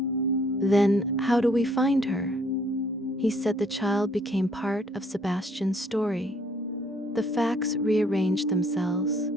"Then how do we find her?" "He said the child became part of Sebastian's story." The facts rearranged themselves.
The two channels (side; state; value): both; normal; correlation 0.64